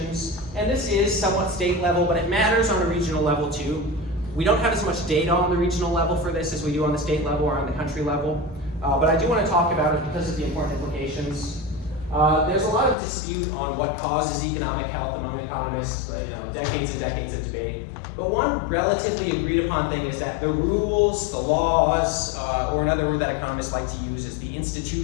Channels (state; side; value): drops out; right; at 13.0 s